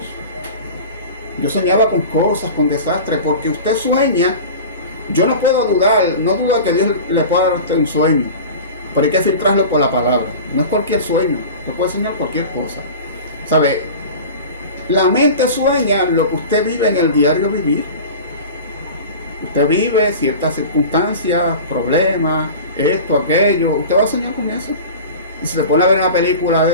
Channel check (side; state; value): both; inverted; correlation -0.35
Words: yo soñaba con cosas, con desastres, porque usted sueña. Yo no puedo dudar, no dudo de que Dios le pueda dar a usted un sueño, pero hay que filtrarlo por la palabra. No es cualquier sueño, usted puede soñar cualquier cosa, ¿sabe? La mente sueña lo que usted vive en el diario vivir. Usted vive ciertas circunstancias, problemas, esto, aquello. Usted va a soñar con eso. Y si se pone a ver una película